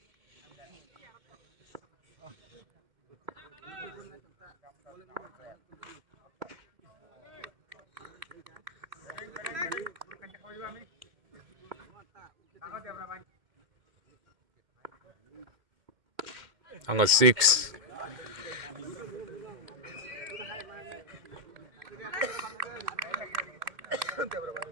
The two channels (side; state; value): left; late; 2.1 ms